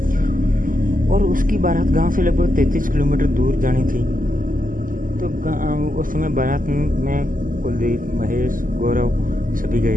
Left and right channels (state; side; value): late; left; 0.40 ms